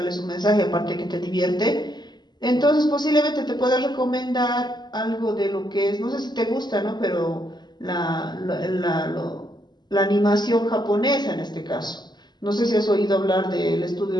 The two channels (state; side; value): late; right; 0.21 ms